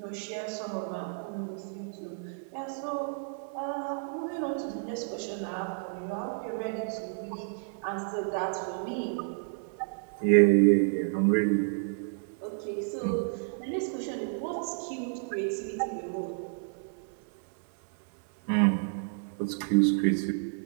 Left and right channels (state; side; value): silent; left; digital silence